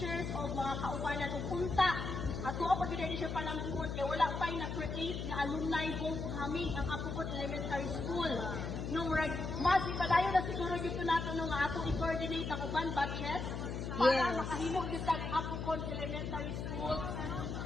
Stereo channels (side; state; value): left; noise; hum, 4 dB below the sound